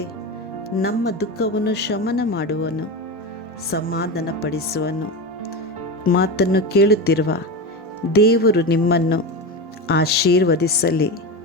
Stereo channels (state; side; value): normal; both; correlation 0.21